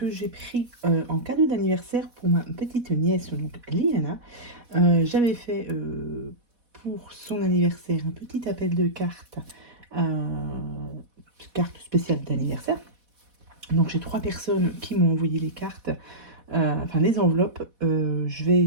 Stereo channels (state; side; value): late; left; 4.1 ms